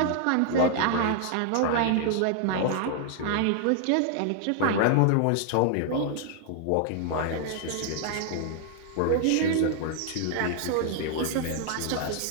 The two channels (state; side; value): different; both; correlation 0.00